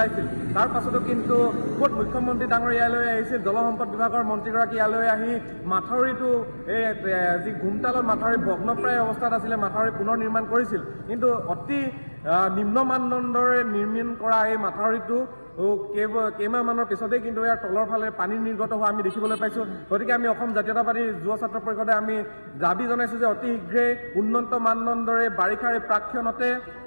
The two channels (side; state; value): both; inverted; correlation -1.00